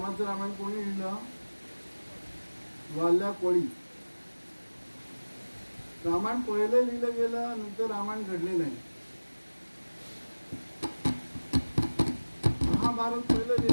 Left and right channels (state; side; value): inverted; both; correlation -1.00